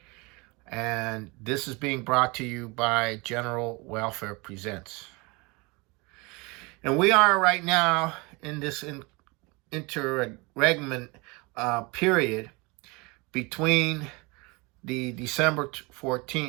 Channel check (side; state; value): left; quieter; 26.9 dB